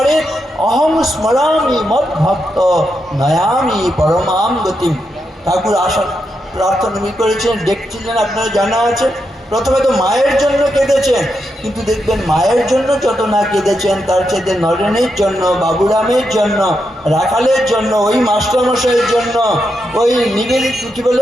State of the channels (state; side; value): normal; both; correlation 0.84